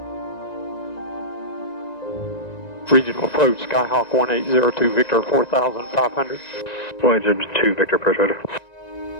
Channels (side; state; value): right; late; 1.9 ms